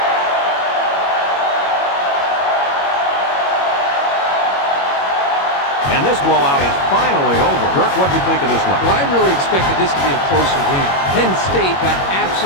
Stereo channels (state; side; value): late; right; 21 ms